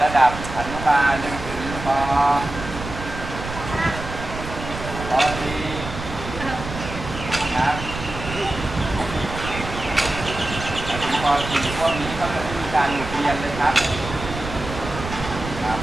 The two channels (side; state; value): right; noise; rumble, 9 dB below the sound